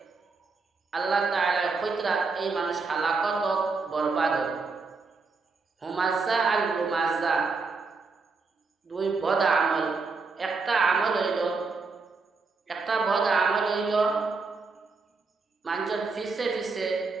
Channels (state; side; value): quieter; left; 4.3 dB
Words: আল্লাহ তাআলা কয়তরা এই মানুষ হালাকত বরবাদ হুমাযা আর লুমাযা দুই পদ আমল একটা আমল হইল একটা বদ আমল হইল মানুষের ফিসে ফিসে